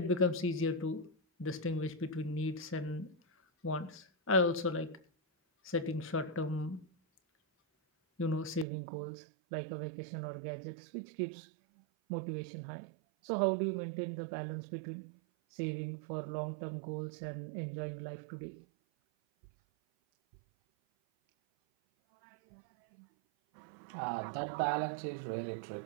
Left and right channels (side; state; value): left; drops out; at 8.7 s